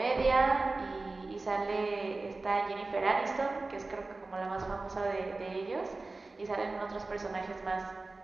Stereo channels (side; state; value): left; quieter; 3.4 dB